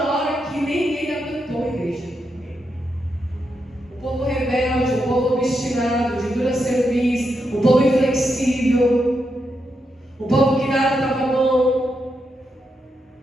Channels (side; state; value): both; normal; correlation 0.83